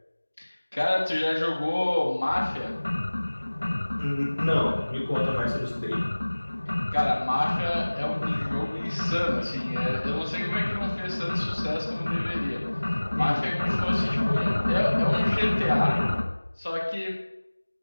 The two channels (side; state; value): both; inverted; correlation -1.00